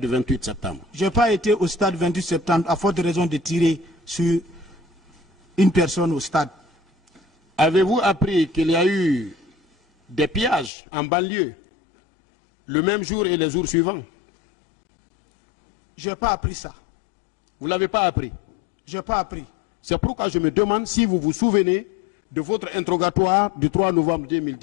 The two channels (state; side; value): drops out; right; at 10.7 s